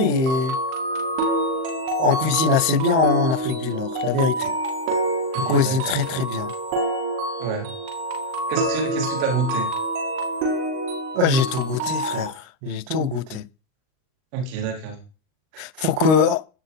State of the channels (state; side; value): late; left; 38 ms